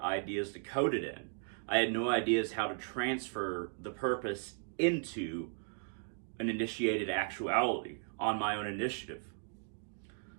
ideas to code it in. I had no ideas how to transfer the purpose into an initiated actuality on my own initiative.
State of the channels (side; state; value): left; silent; 54 dB below the other